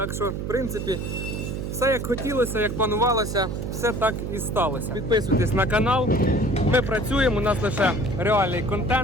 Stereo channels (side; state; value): right; noise; hum, 4 dB below the sound